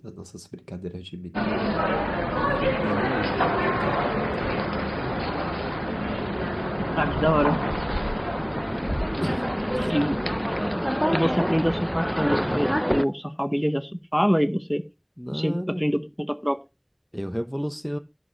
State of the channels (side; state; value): both; identical; correlation 1.00